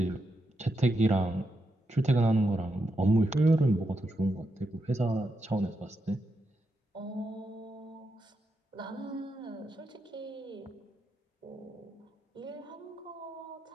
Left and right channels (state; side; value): normal; both; correlation 0.84